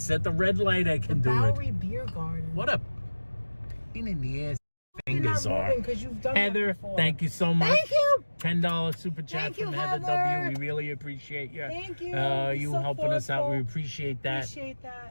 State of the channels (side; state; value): both; inverted; correlation -1.00